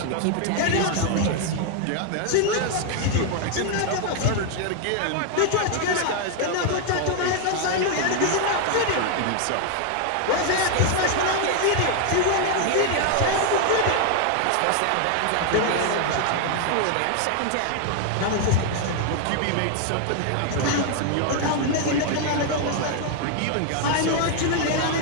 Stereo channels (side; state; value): both; different; correlation 0.00